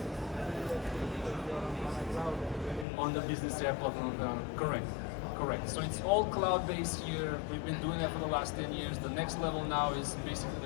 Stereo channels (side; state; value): right; drops out; at 2.9 s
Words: On the Business AI platform, correct. So it's all cloud-based here. We've been doing that for the last 10 years. The next level now is basically